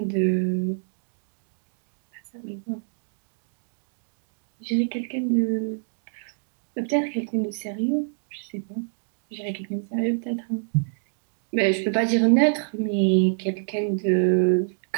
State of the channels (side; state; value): left; silent; digital silence